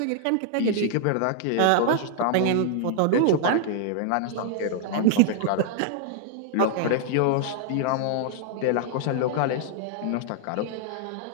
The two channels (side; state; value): both; different; correlation 0.00